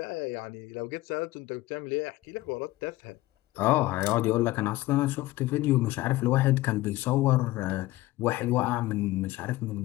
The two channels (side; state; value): right; quieter; 17.6 dB